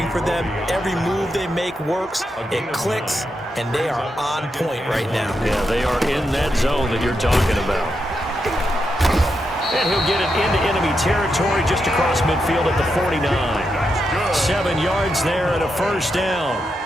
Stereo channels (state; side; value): normal; both; correlation 0.84